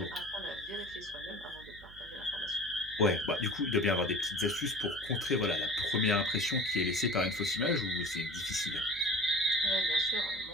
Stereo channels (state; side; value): noise; right; hum, 21 dB below the sound